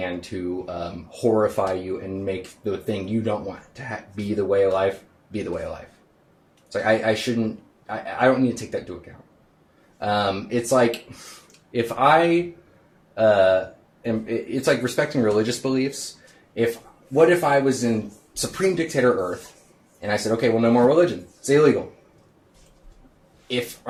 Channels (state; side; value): identical; both; correlation 1.00